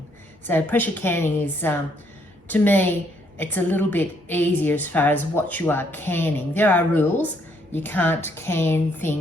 So pressure canning is, to me, it's a little bit easier as far as what you are canning. There are rules. You can't can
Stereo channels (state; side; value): normal; both; correlation 0.70